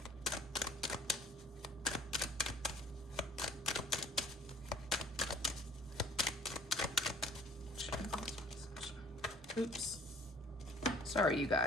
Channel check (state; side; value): normal; both; correlation 0.52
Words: Oops. Sorry, you